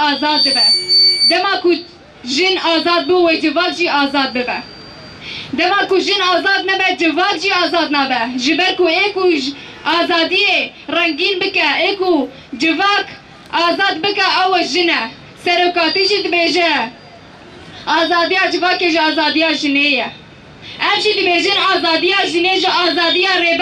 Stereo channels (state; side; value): identical; both; correlation 1.00